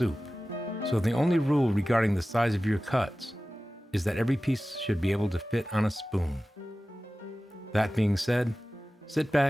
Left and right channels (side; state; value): both; normal; correlation 0.96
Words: So the only rule regarding the size of your cuts is that every piece should be able to fit on a spoon. That being said, sit